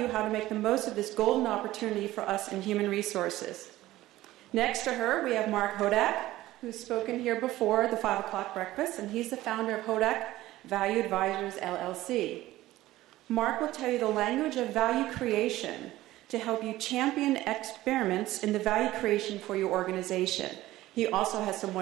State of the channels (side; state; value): left; quieter; 16.2 dB